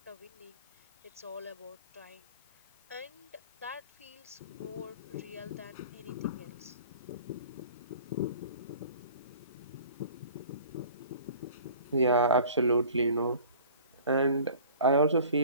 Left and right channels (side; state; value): both; inverted; correlation -0.46